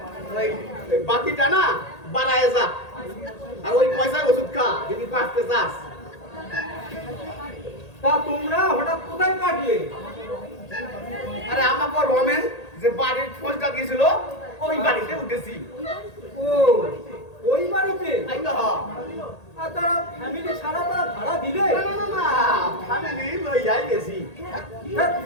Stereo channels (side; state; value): right; late; 1.8 ms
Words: ওই বাকিটা না বাড়ায় যা, আর ওই পয়সায় ওষুধ খা যদি বাঁচতে চাস। তা তোমরা হঠাৎ কোথায় কাটলে? আরে আমাকে রমেন যে বাড়ির খোঁজটা দিয়েছিল ওই বাড়িতে উঠেছি। ও, ওই বাড়িতে? তাই তো হ্যাঁ। আর তারা ফ্যামিলি ছাড়া তারা ভাড়া দিলে? না না না না, ফ্যামিলি লইয়াই গেছি।